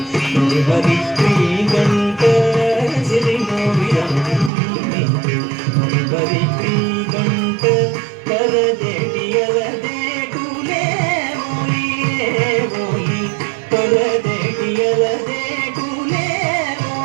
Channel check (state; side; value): drops out; left; at 4.5 s